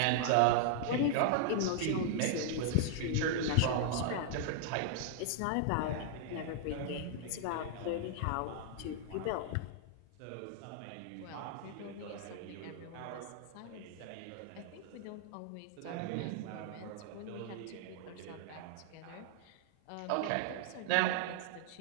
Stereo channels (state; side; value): different; both; correlation -0.01